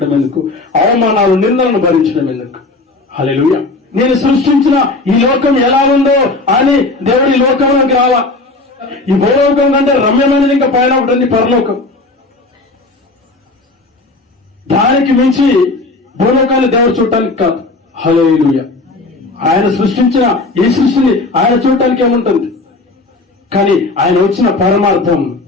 ఎందుకు? అవమానాలు, నిందలను భరించడం ఎందుకు? హల్లెలూయా. నేను సృష్టించిన ఈ లోకం ఎలా ఉందో అని దేవుడు ఈ లోకంలోకి రాలా. ఈ భూలోకం కంటే రమ్యమైనది ఇంకా పైన ఉంటుంది పరలోకం. దానికి మించి భూలోకాన్ని దేవుడు చూడటానికి కాదు. హల్లెలూయా. ఆయన సృష్టించిన ఈ సృష్టిని ఆయన చూడటానికి ఏముంటుంది? కానీ ఆయన వచ్చిన పరమార్థం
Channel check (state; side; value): quieter; right; 3.2 dB